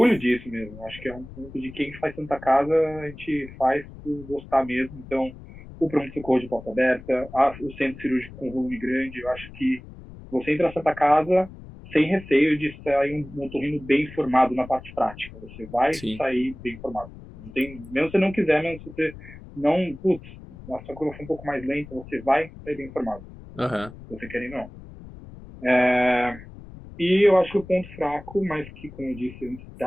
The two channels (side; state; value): left; noise; rumble, 16 dB below the sound